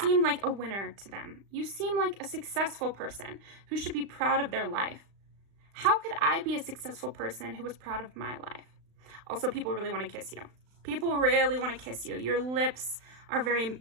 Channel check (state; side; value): late; left; 35 ms